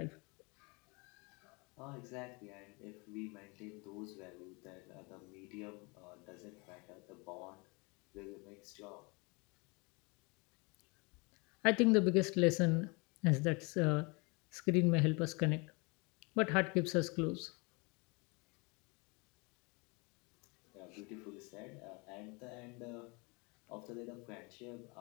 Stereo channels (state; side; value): quieter; right; 29.3 dB